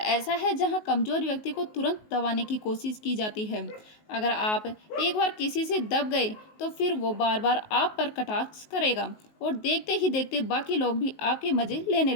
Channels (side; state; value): right; late; 19 ms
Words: है जहां कमज़ोर व्यक्ति को तुरंत दबाने की कोशिश की जाती है। अगर आप एक बार किसी से दब गए तो फिर वो बार बार आप पर कटाक्ष करेगा और देखते ही देखते बाकी लोग भी आपके मज़े लेने